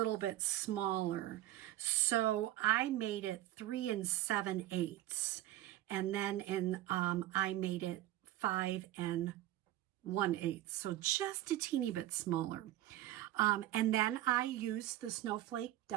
bit smaller. So I made it 3 7/8, and then I made it 5 1/8, so just a teeny bit smaller. And then I used the snowflake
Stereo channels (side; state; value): left; quieter; 14.4 dB